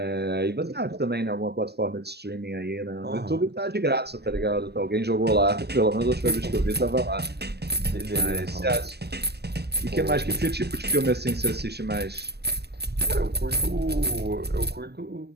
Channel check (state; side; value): late; left; 0.47 ms